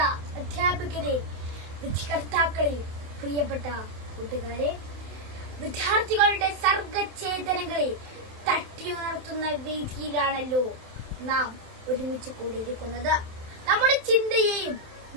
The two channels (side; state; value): left; late; 27 ms